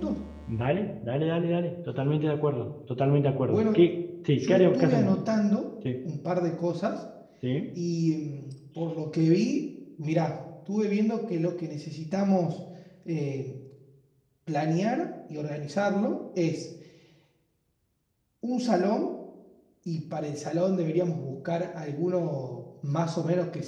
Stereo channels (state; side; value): identical; both; correlation 1.00